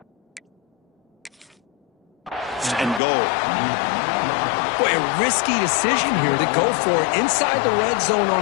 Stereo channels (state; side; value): drops out; right; at 3.0 s